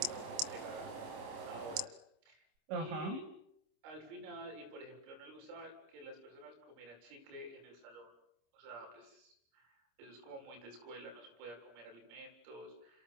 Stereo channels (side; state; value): left; late; 26 ms